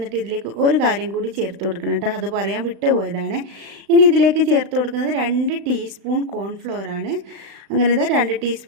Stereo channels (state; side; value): late; left; 36 ms